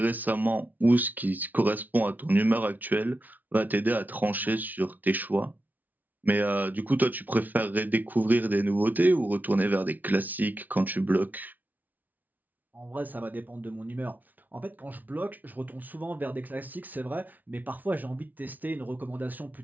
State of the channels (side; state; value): left; late; 0.081 ms